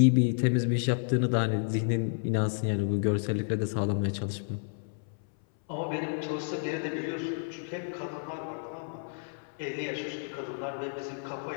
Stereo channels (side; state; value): right; silent; 57 dB below the other